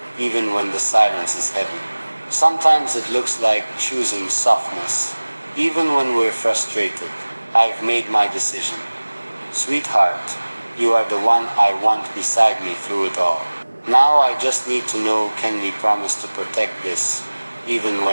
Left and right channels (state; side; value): inverted; both; correlation -1.00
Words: even when the silence is heavy. Sometimes it looks like choosing softness, even when we're frustrated. I've made my decision. Sweetheart, you are the one I want beside me through it all. Now I just need to know, can we promise to protect this, even